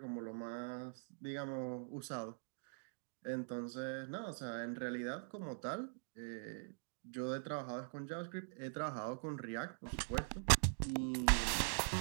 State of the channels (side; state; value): left; silent; digital silence